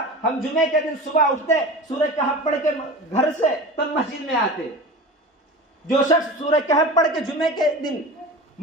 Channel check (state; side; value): normal; both; correlation 0.33